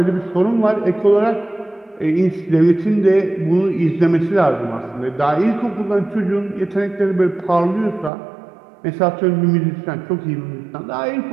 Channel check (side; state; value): left; drops out; at 8.1 s